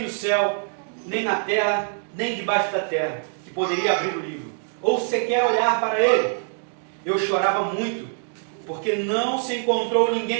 no céu, nem na terra, nem debaixo da terra, que poderia abrir o livro, ou sequer olhar para ele. Eu chorava muito, porque não se encontrou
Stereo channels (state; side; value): silent; left; 63 dB below the other